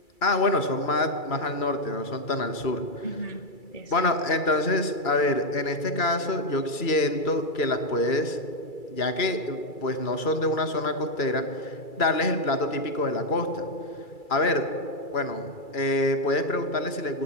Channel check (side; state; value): right; late; 2.3 ms